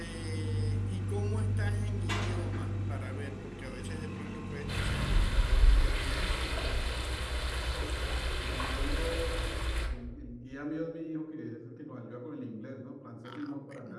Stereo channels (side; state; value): both; identical; correlation 1.00